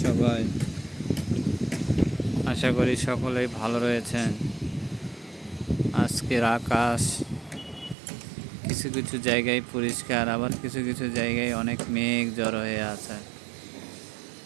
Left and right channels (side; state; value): left; drops out; at 8.0 s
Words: সবাই? আশা করি সকলেই ভালো রয়েছেন। আজকের আকাশ কিছু কিছু জায়গায় পরিষ্কার, আবার কিছু কিছু জায়গায় অনেক মেঘ জড়ো হয়ে আছে।